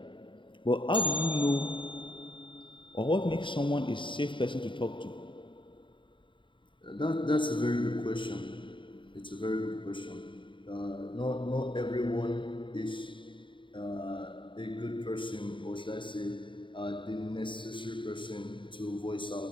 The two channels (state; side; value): late; right; 0.24 ms